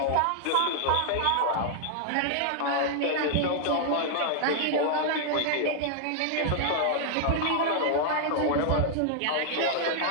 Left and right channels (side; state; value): both; different; correlation -0.01